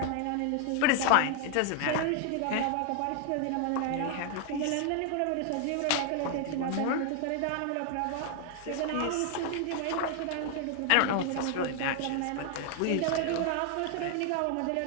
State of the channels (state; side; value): different; both; correlation 0.00